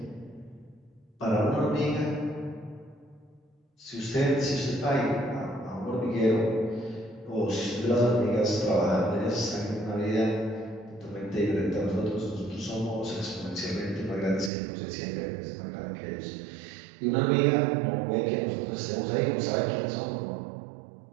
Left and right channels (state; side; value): drops out; left; at 14.5 s